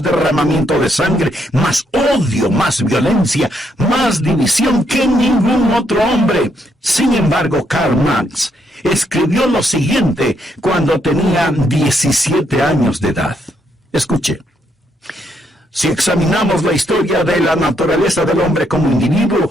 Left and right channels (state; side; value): normal; both; correlation 0.75